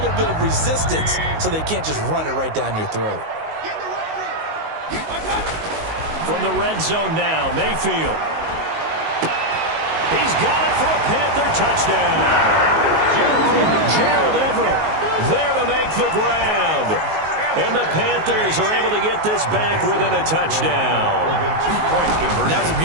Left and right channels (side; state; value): left; late; 19 ms